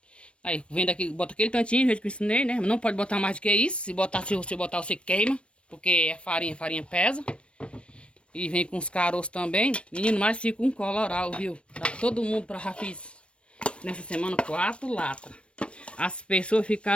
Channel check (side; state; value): right; late; 0.059 ms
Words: Aí vem daqui, bota aquele tantinho, do jeito que eu ensinei, né? Não pode botar mais do que isso. Se você botar, você queima, porque é farinha pesa. E vem com os caroços também. Menino, mas fica um coloral, viu? Tá todo mundo para já fiz nessa semana 4 latas. As pessoas